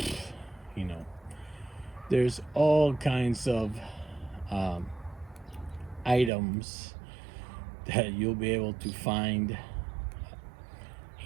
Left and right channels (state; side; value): drops out; left; at 6.3 s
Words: you know, there's all kinds of items that you'll be able to find